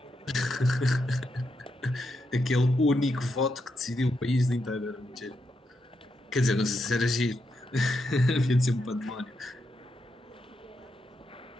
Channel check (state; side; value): normal; both; correlation 0.83